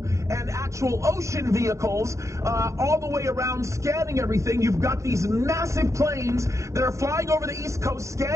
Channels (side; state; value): left; late; 0.15 ms